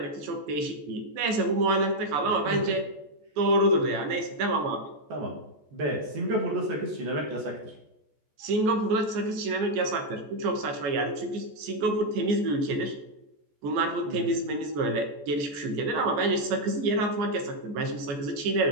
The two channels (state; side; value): late; left; 14 ms